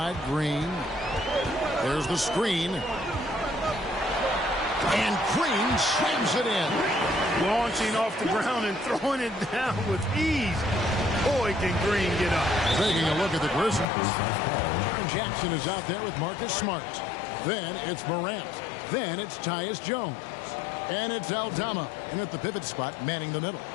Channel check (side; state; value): right; drops out; at 13.9 s